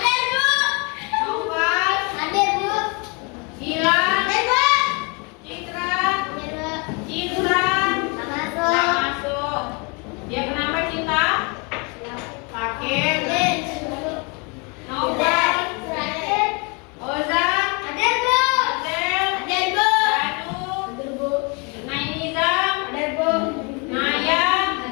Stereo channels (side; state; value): right; quieter; 31.8 dB